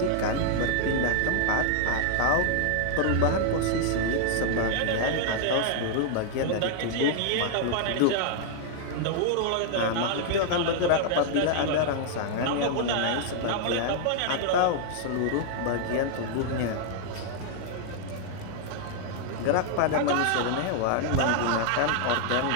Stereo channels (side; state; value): both; different; correlation 0.00